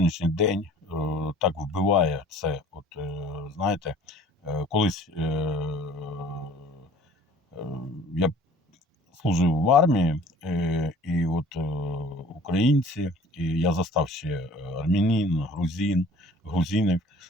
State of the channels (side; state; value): both; normal; correlation 0.50